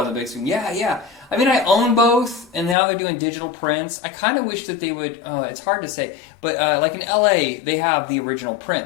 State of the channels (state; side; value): drops out; right; at 2.8 s